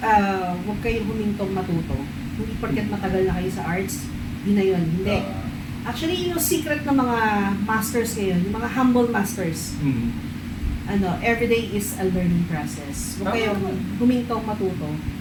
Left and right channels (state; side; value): identical; both; correlation 1.00